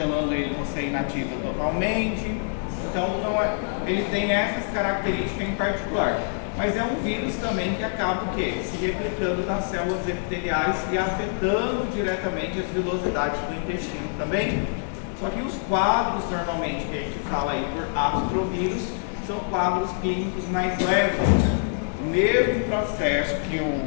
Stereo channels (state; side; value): silent; right; digital silence